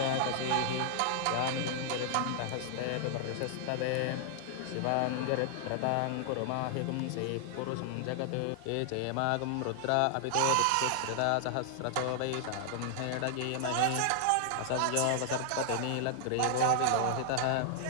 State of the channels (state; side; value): different; both; correlation -0.01